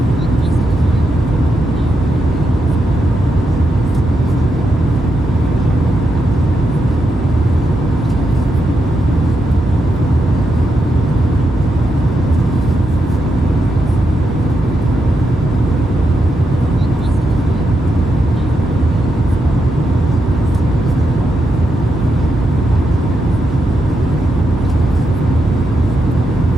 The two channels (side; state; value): both; normal; correlation 0.84